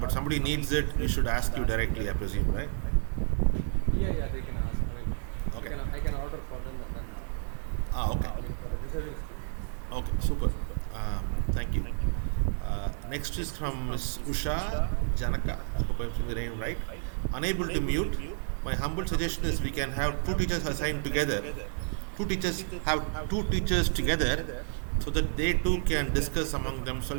but somebody needs it, we should ask you directly, I presume, right? Yeah, they can ask. Okay. I can order for them and then Okay. for the deserving students. Okay, super. Thank you. Next is from Ms. Usha Janaka. I hope I'm saying the name right. Unable to mute. My humble suggestion is we can have two teachers assigned together. Two teachers have two teachers together so that they too can discuss among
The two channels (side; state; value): left; silent; 58 dB below the other